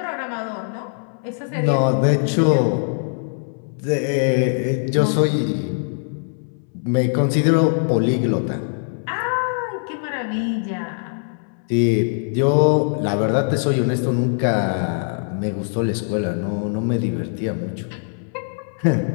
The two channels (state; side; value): silent; right; 64 dB below the other